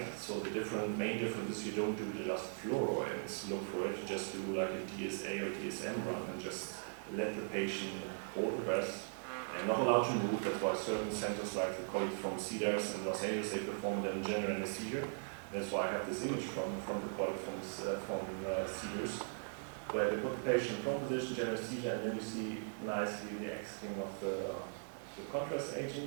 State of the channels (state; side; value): silent; left; 52 dB below the other